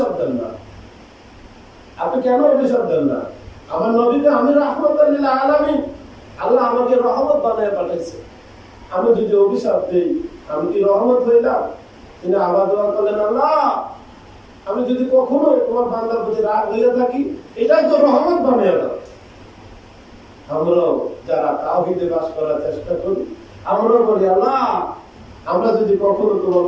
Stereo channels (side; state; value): both; identical; correlation 1.00